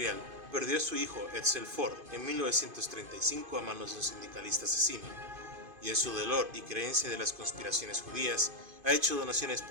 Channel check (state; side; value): late; left; 2.5 ms